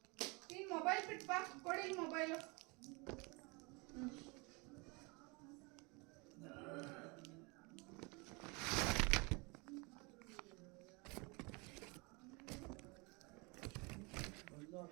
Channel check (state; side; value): quieter; left; 28.8 dB